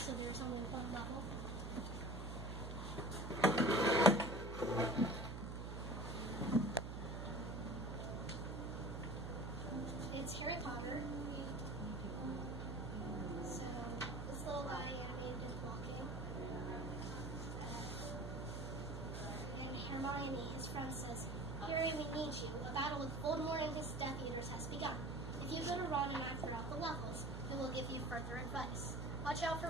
there's only one level. It's Harry Potter. So this little guy animated is walking. And Hermione, his friend, says, "Harry, we need you. A battle with Voldemort and his Death Eaters has begun. If you go to Ron and I throughout the levels, we will give you further advice. Watch out for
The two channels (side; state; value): right; noise; hum, 6 dB below the sound